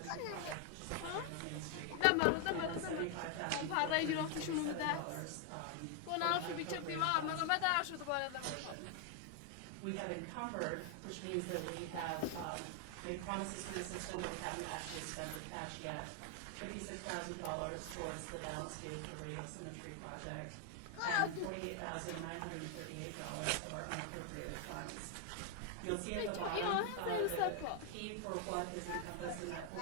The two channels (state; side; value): different; both; correlation 0.01